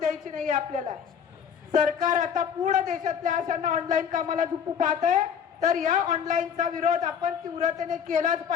नाही आपल्याला. सरकार आता पूर्ण देशातल्या अशांना ऑनलाईन कामाला झुकू पाहत आहे, तर या ऑनलाईनचा विरोध आपण तीव्रतेने केलाच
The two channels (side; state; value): right; quieter; 7.7 dB